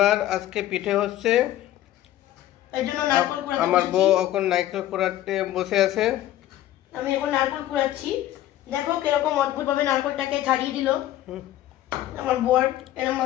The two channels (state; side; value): quieter; right; 13.6 dB